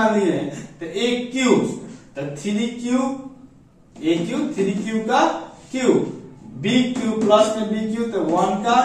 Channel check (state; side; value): identical; both; correlation 1.00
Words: लिए हैं, तो aq तो 3q का q bq प्लस में bq तो 1 का